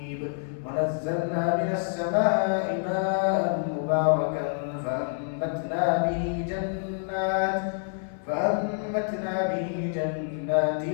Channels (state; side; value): silent; right; 60 dB below the other